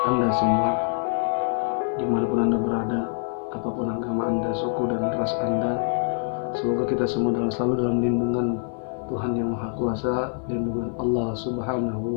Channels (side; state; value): right; silent; digital silence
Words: Anda semua, dimanapun Anda berada, apapun agama Anda, suku dan ras Anda. Semoga kita semua selalu dalam lindungan Tuhan yang Maha Kuasa, lindungan Allah